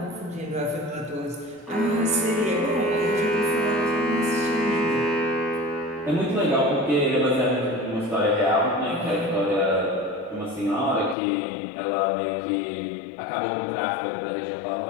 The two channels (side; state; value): right; drops out; at 11.2 s